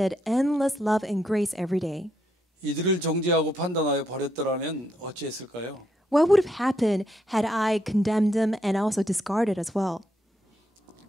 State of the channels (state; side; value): normal; both; correlation 0.77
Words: endless love and grace every day. 이들을 정죄하고 판단하여 버렸더라면 어찌했을까요? What would have happened had I condemned them and also discarded as well?